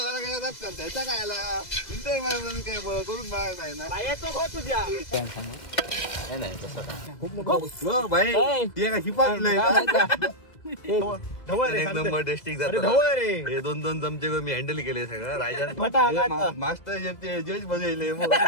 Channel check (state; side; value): late; right; 2.0 ms